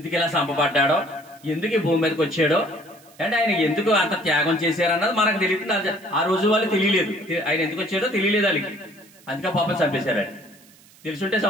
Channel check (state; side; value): noise; right; hiss, 26 dB below the sound